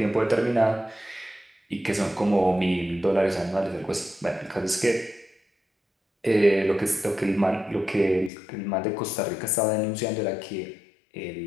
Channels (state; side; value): drops out; right; at 8.3 s